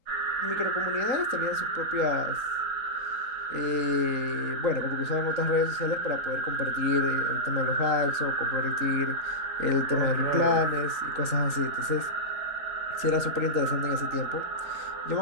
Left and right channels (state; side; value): late; left; 3.9 ms